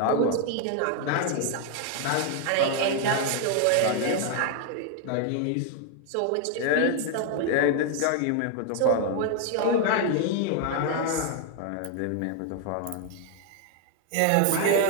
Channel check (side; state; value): both; different; correlation 0.00